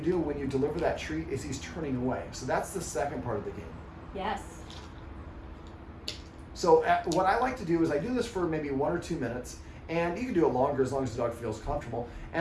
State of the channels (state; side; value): identical; both; correlation 1.00